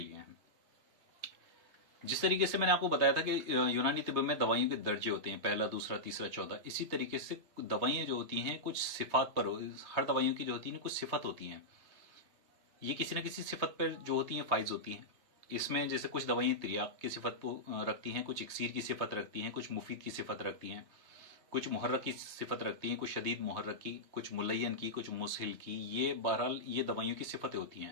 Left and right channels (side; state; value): left; late; 3.2 ms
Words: है। जिस तरीके से मैंने आपको बताया था कि यूनानी तिब में दवाइयों के दर्जे होते हैं, पहला, दूसरा, तीसरा, चौथा। इसी तरीके से दवाइयाँ जो होती हैं कुछ सिफात पर, हर दवाइयों की जो होती है कुछ सिफत होती हैं। ये किसी न किसी सिफत पर जो होती हैं फाइज होती हैं। इसमें जैसे कुछ दवाइयाँ तिर्याक की सिफत को रखती हैं, कुछ इक्सीर की सिफत रखती हैं, कुछ मुफीद की सिफत रखती हैं, कुछ मुहर्रक की सिफत रखती हैं, कुछ शदीद मुहर्रक की, कुछ मुलयन की, कुछ मुसहिल की। ये बहरहाल ये दवाइयों की सिफतें होती